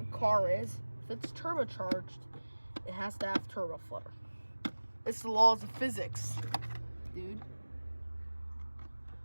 car is, if it's turbocharged, it has to have turbo flutter. It's the laws of physics, dude.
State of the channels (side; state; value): both; inverted; correlation -1.00